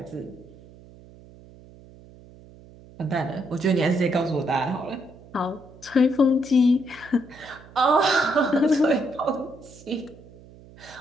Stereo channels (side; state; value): right; noise; hum, 22 dB below the sound